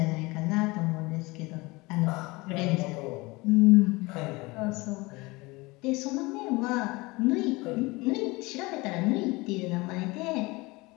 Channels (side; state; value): right; quieter; 23.4 dB